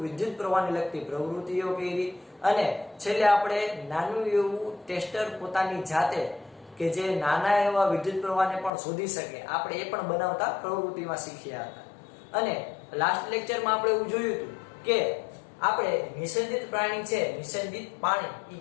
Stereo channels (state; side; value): drops out; right; at 8.7 s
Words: વિદ્યુત પ્રવાહને લગતી પ્રવૃત્તિઓ કરી અને છેલ્લે આપણે નાનું એવું ટેસ્ટર પોતાની જાતે કે જે નાના એવા વિદ્યુત પ્રવાહને પણ શોધી શકે આપણે એ પણ બનાવતા પ્રવૃત્તિમાં શીખ્યા હતા. અને લાસ્ટ લેક્ચરમાં આપણે એવું જોયું હતું કે આપણે નિષેધિત પ્રાણી છે, નિષેધિત પાણી એ